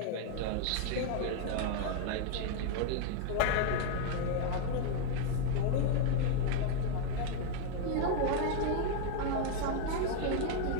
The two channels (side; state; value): both; different; correlation 0.00